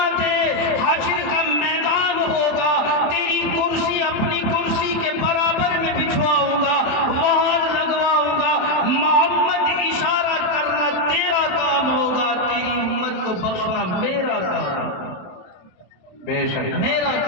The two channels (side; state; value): right; late; 27 ms